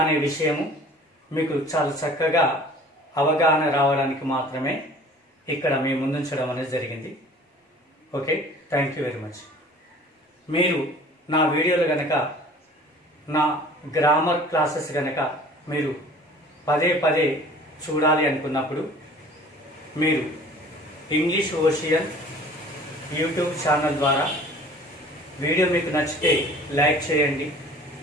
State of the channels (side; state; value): both; normal; correlation 0.47